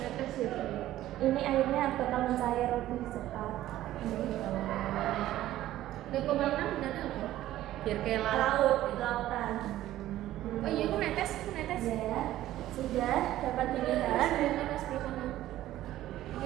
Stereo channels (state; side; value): quieter; left; 14.1 dB